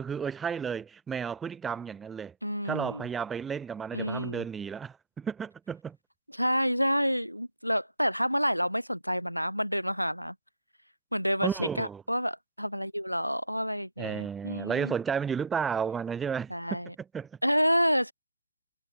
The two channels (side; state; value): both; inverted; correlation -0.52